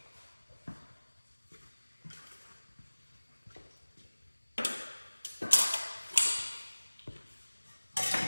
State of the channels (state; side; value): inverted; both; correlation -1.00